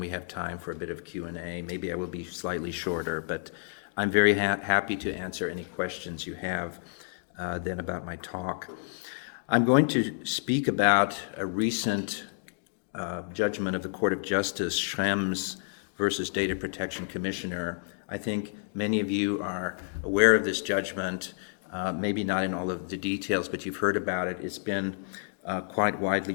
we have time for a bit of Q&A. Maybe I will be slightly shorter, but I'm very happy to answer any questions you have then about my talk. I'm going to speak about a recent judgment of the Court of Justice, Schrems versus Data Protection Commissioner. I think many of you are aware of this judgment, maybe not in all of the details, but you've heard about it. It's been quite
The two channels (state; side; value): silent; right; digital silence